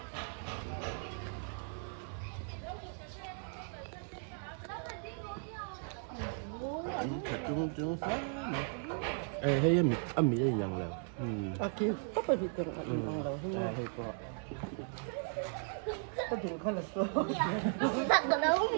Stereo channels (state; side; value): silent; left; 53 dB below the other